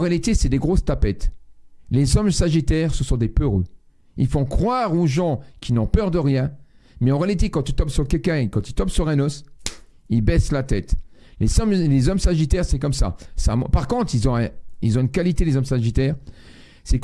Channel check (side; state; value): both; identical; correlation 1.00